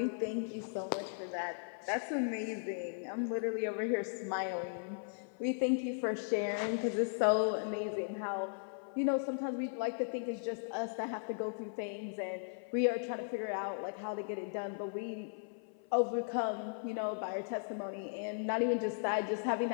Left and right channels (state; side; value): silent; right; 53 dB below the other